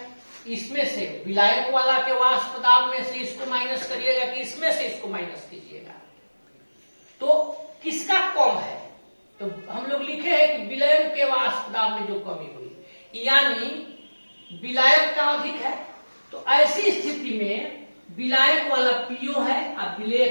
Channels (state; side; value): inverted; both; correlation -1.00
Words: इसमें से विलायक वाला के वाष्प दाब में से इसको माइनस करिएगा कि इसमें से इसको माइनस कीजिएगा, तो किसका कम है। तो हम लोग लिखे हैं कि विलयन के वाष्प दाब में जो कमी हुई यानी विलायक का अधिक है, तो ऐसी स्थिति में विलायक वाला पीओ है और